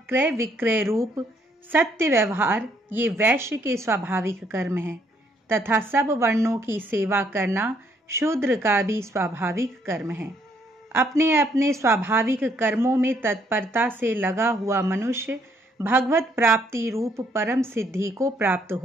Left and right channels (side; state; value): both; normal; correlation 0.69